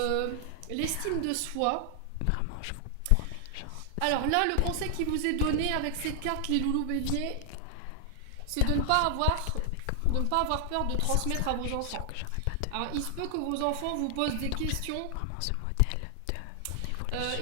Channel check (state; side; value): different; both; correlation 0.00